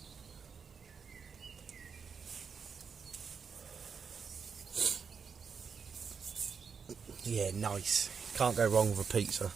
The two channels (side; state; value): left; quieter; 6.1 dB